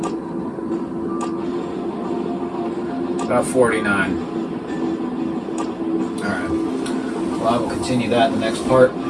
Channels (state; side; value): identical; both; correlation 1.00